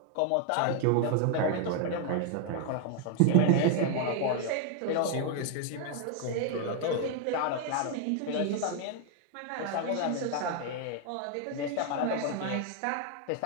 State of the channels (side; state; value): both; different; correlation 0.00